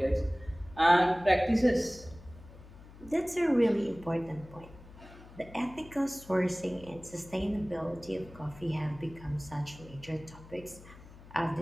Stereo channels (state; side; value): noise; left; hum, 19 dB below the sound